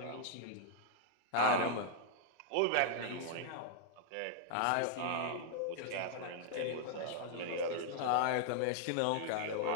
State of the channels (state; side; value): different; both; correlation -0.01